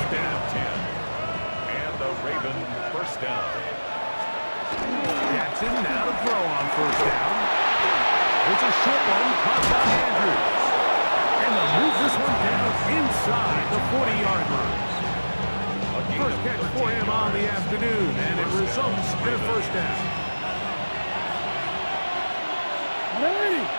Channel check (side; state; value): both; inverted; correlation -1.00